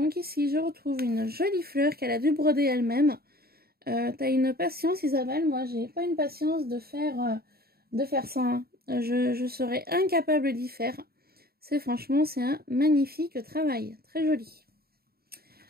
ici, je retrouve une jolie fleur qu'elle a dû broder elle-même. T'as une patience, Isabelle. Moi, j'ai pas une patience de faire ça. Hein. Je serais incapable d'y faire. Franchement, c'est un magnifique travail. Très joli.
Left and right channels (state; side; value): late; left; 0.45 ms